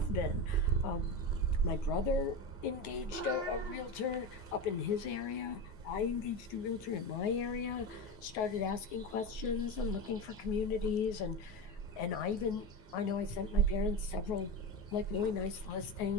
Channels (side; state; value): right; late; 9.4 ms